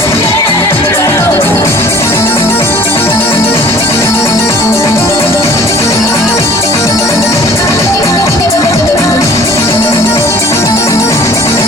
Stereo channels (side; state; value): both; normal; correlation 0.49